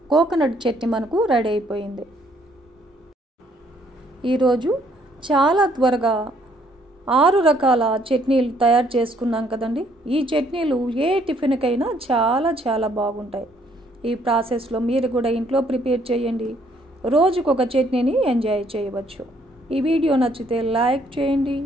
కోకోనట్ చట్నీ మనకు రెడీ అయిపోయింది. ఈరోజు చాలా త్వరగా 6 రకాల చట్నీలు తయారు చేసుకున్నాం కదండి. ఈ చట్నీలు ఏ టిఫిన్కైనా చాలా చాలా బాగుంటాయి. ఈ ప్రాసెస్లో మీరు కూడా ఇంట్లో ప్రిపేర్ చేయండి. రోజుకొక చట్నీని ఎంజాయ్ చేయవచ్చు. ఈ వీడియో నచ్చితే లైక్ చేయండి,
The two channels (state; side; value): normal; both; correlation 0.66